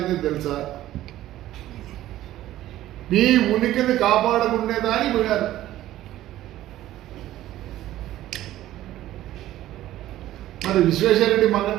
తెలుసా? నీ ఉనికిని కాపాడుకునేదాని పోయారు. మరి విశ్వేశ్వరరెడ్డి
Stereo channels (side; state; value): left; quieter; 14.2 dB